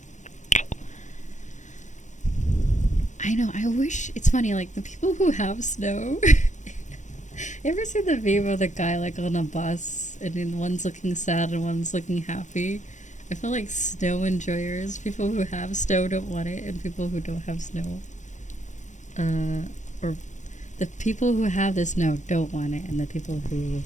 I know, I wish, it's funny, like, the people who have snow, you ever see the meme of the guy, like, on a bus, and then one's looking sad and one's looking happy? I feel like snow enjoyers, people who have snow don't want it, and people who don't have snow, or the people who have the snow don't want it, and the people who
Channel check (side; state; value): right; late; 0.35 ms